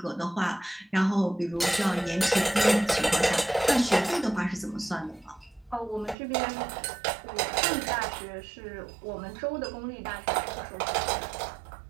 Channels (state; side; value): drops out; left; at 6.2 s